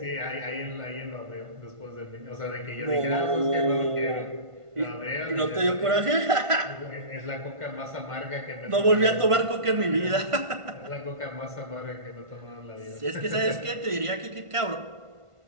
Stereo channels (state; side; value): late; left; 1.5 ms